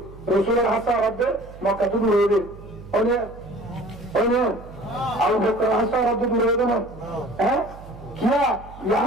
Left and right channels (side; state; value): right; noise; hum, 17 dB below the sound